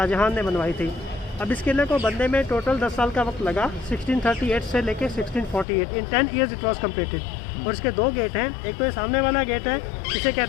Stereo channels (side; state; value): right; drops out; at 5.7 s